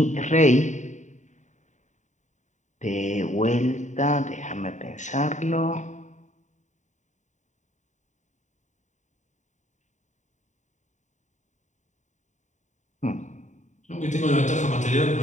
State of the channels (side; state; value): right; late; 0.35 ms